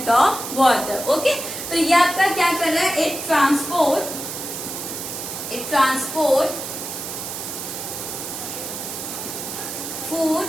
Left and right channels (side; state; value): right; noise; hiss, 7 dB below the sound